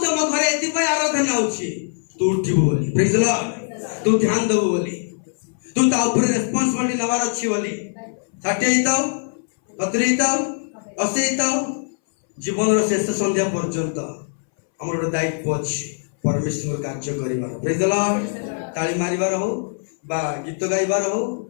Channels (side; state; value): right; silent; 62 dB below the other